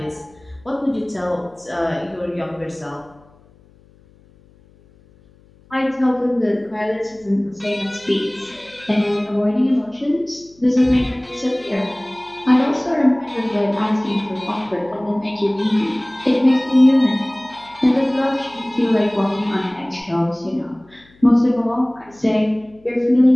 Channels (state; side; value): noise; left; hum, 29 dB below the sound